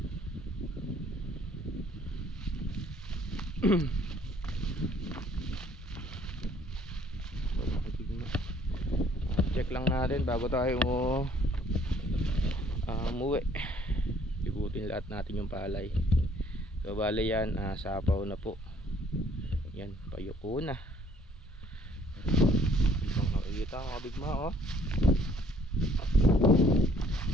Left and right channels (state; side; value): normal; both; correlation 0.60